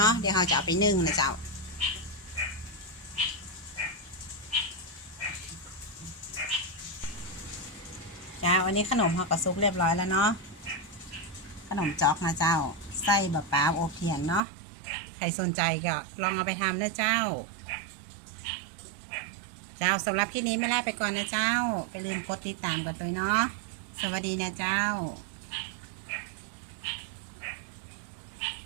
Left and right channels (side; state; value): left; drops out; at 14.4 s